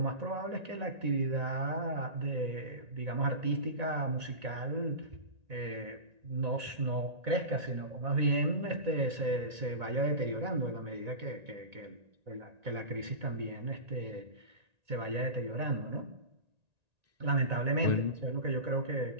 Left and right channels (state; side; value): late; left; 1.9 ms